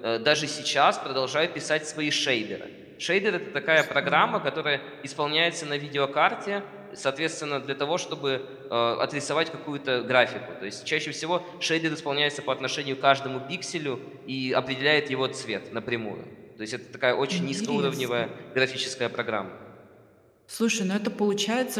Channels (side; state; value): both; identical; correlation 1.00